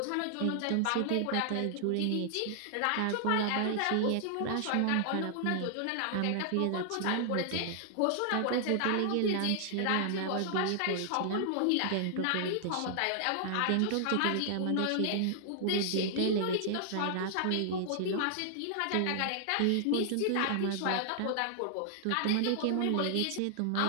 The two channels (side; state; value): both; different; correlation 0.00